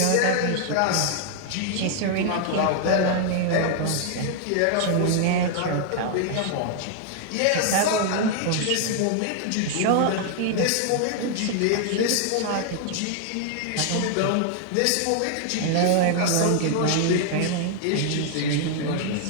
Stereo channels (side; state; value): both; different; correlation 0.00